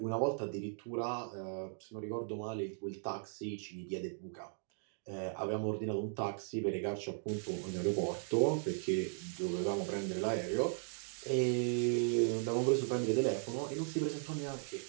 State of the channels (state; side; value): silent; left; digital silence